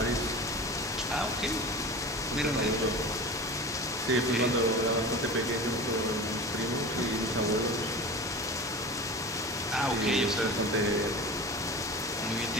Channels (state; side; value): normal; both; correlation 0.33